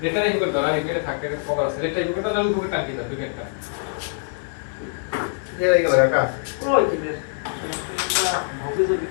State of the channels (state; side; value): silent; right; digital silence